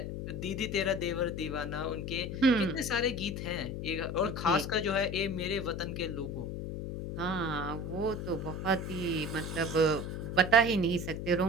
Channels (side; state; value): left; noise; hum, 5 dB below the sound